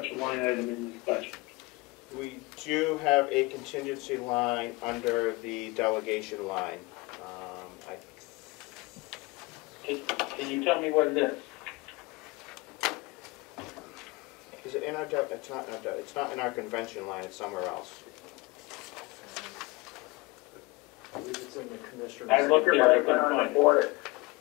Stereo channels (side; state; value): right; quieter; 23.9 dB